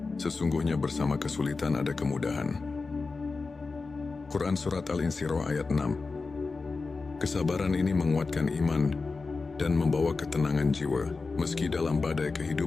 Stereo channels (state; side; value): quieter; right; 4.1 dB